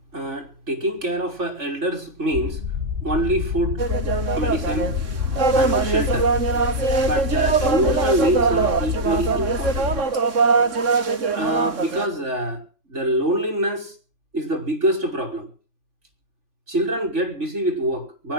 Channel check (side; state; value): left; late; 3.6 ms